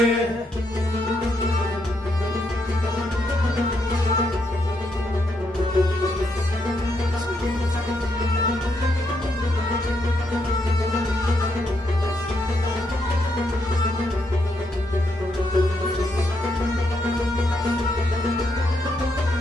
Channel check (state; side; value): normal; both; correlation 0.78